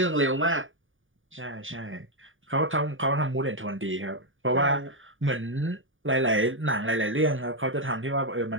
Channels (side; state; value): left; late; 0.57 ms